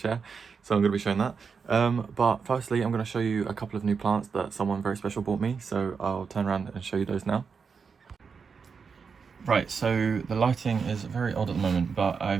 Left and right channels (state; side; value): quieter; left; 5.7 dB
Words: So I'm going to be showing that. But firstly, I'm going to show you a couple of new plants that someone very special bought me. So I'll turn around and show you those now. Right, so the lighting is very odd at the moment, but